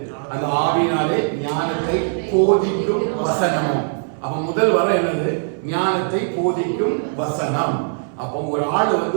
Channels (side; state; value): left; silent; 59 dB below the other